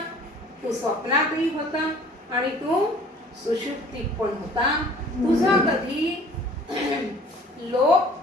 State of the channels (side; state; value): both; normal; correlation 0.51